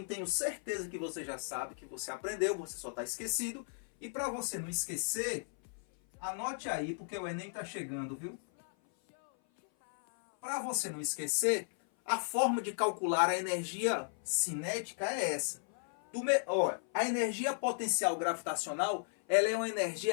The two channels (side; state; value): right; silent; 54 dB below the other